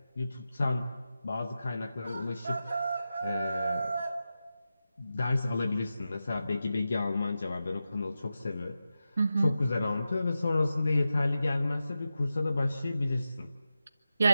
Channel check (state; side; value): inverted; both; correlation -0.91